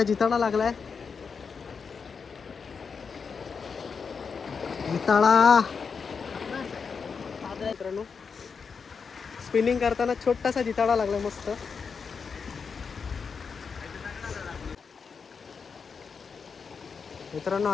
जिताडा लागलाय. जिताळा. मित्रांनो स्पिनिंग करताना छोटासा जिताळा लागला मस्त. मित्रांनो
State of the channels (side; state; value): right; quieter; 5.6 dB